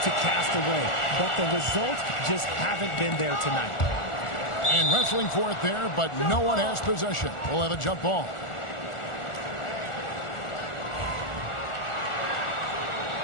cast away, but the results just haven't been there tonight. And wrestling for it there, but no one has possession. We'll have a jump ball.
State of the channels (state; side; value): late; right; 1.4 ms